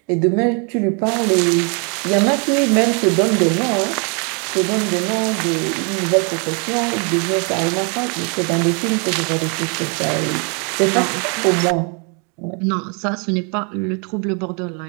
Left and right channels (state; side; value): quieter; left; 36.2 dB